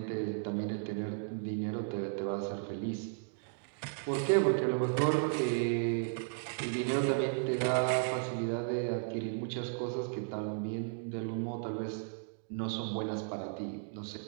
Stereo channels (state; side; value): silent; left; digital silence